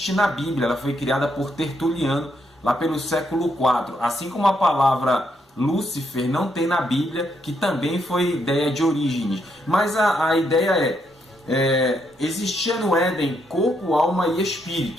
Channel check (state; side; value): normal; both; correlation 0.77